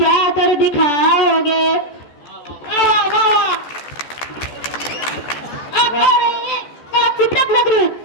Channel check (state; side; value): late; right; 14 ms